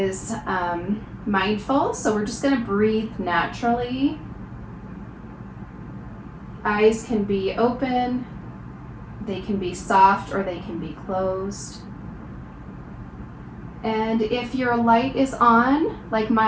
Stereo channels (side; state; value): both; identical; correlation 1.00